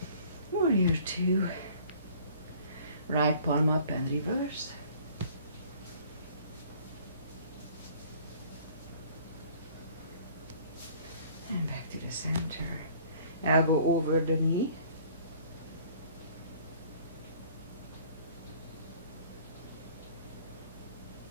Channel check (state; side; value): inverted; both; correlation -0.52